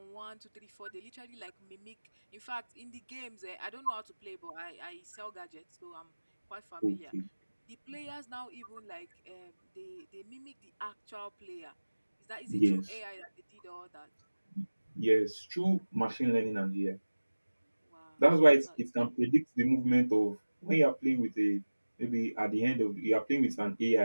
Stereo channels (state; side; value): inverted; both; correlation -1.00